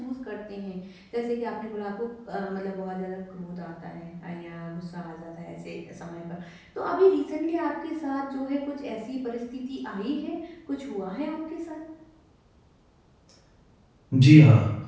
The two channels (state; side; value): identical; both; correlation 1.00